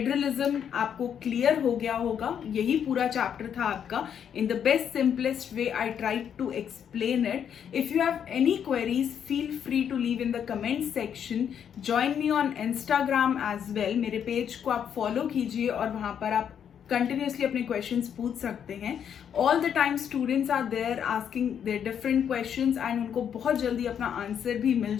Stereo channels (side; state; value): right; quieter; 8.4 dB